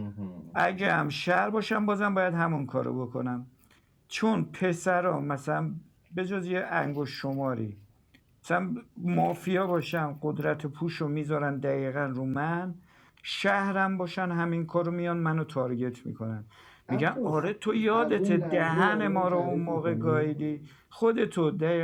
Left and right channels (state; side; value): identical; both; correlation 1.00